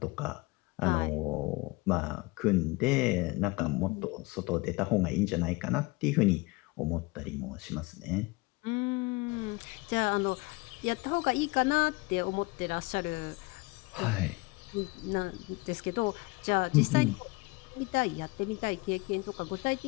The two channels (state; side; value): quieter; right; 24.6 dB